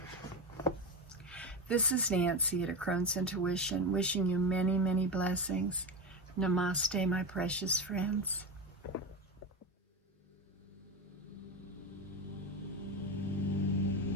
This is Nancy at A Crone's Intuition, wishing you many, many blessings. Namaste, my precious friends.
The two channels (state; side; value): normal; both; correlation 0.19